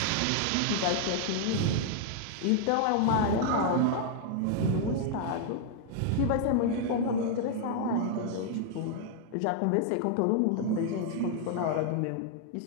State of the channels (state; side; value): different; both; correlation 0.00